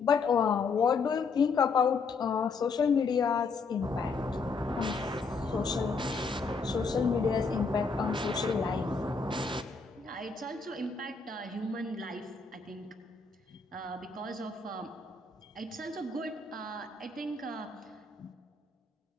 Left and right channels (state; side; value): quieter; right; 4.5 dB